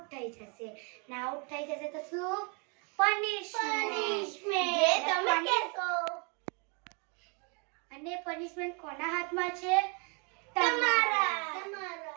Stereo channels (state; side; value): quieter; left; 33.5 dB